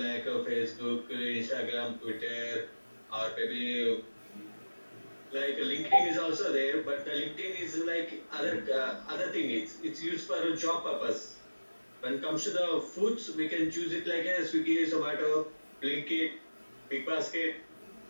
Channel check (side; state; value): both; inverted; correlation -1.00